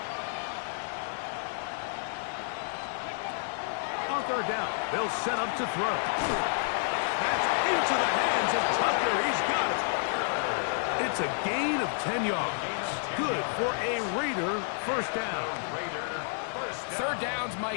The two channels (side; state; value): right; silent; digital silence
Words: On third down, they'll set up to throw. That's into the hands of Tucker. He's got it. It's a gain of 10 yards. Good for a Raider first down. Third downs,